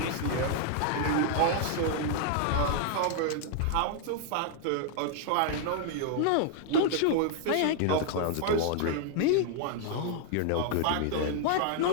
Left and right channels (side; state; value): both; different; correlation 0.00